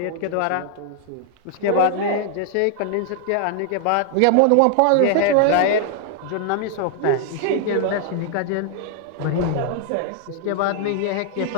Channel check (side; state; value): both; different; correlation 0.00